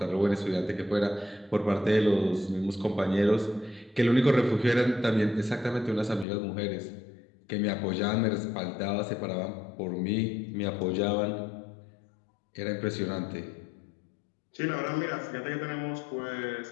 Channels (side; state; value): right; drops out; at 6.2 s